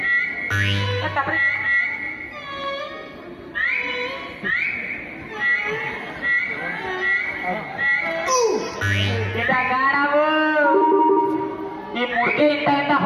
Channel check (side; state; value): both; identical; correlation 1.00